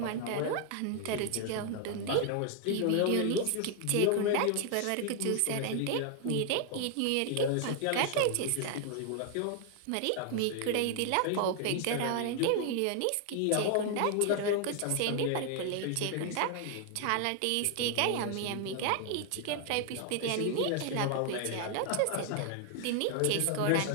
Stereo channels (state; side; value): different; both; correlation 0.00